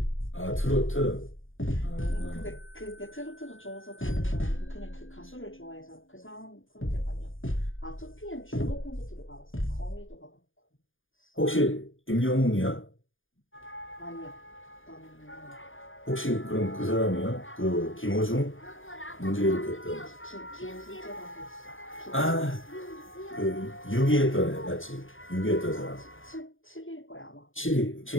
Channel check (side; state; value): right; late; 0.58 ms